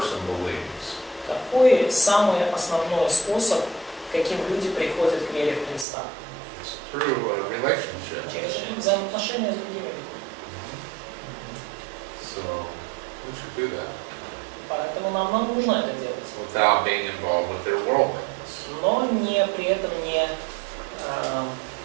believes? Какой самый основной способ, каким люди приходят к вере в Христа? It's through a relationship. Через взаимоотношения с другими людьми. So we should do that Поэтому нам нужно это делать. without being involved with their worldliness. Но при этом не,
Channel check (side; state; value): left; drops out; at 5.9 s